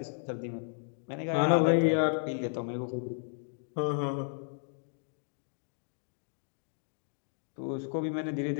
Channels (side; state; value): right; silent; digital silence